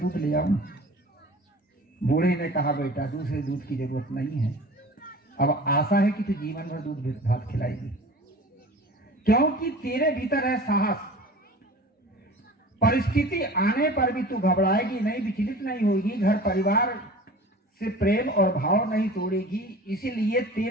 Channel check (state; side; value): normal; both; correlation 0.41